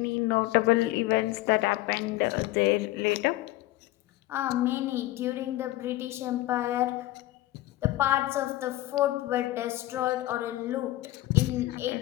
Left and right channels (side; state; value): right; quieter; 16.8 dB